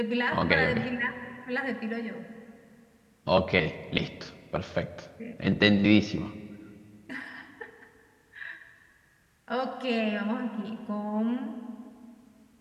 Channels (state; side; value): identical; both; correlation 1.00